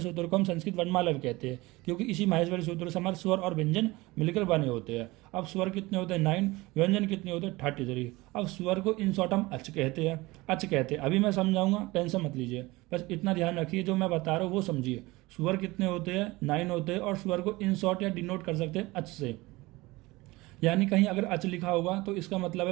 सूत्र को हम संस्कृत वर्णमाला भी कहते हैं, क्योंकि इसी माहेश्वरी सूत्र से हमारे स्वर और व्यंजन मिलकर बने होते हैं। अब स्वर कितने होते हैं? 9। व्यंजन कितने होते हैं? 33। अब स्वर को इन शॉर्ट हम अच कहते हैं, अच कहते हैं। अभी मैं समझाऊंगा, टेंशन मत लीजिए, बस इतना ध्यान रखिए, जो मैं बता रहा हूँ वो समझिए। स्वर कितने होते हैं? 9 होते हैं, और स्वर को इन शॉर्ट या डिनोट कर सकते हैं अच से। यानी कहीं अगर अच लिखा होगा तो इसका मतलब है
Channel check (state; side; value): quieter; left; 21.2 dB